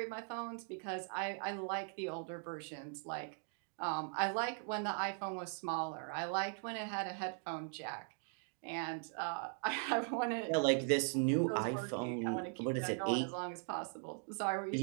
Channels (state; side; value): silent; left; 51 dB below the other